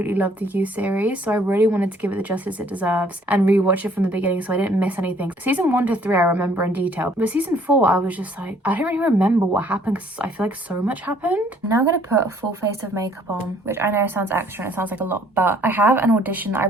love the You series, so I really wanted to give it the justice it deserves and rewatch it from the beginning so I didn't miss anything. Season 1 to 3 I remember in detail, but season 4 I was just like, I don't really remember what happened because I feel like so much happened. Now I'm gonna put a full face of makeup on, which I know sounds extra and it sounds like a lot, but I have an audition that I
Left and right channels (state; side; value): normal; both; correlation 0.61